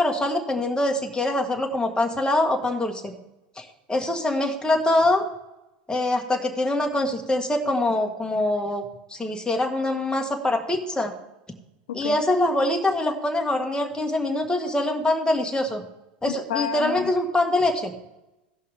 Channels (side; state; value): both; normal; correlation 0.74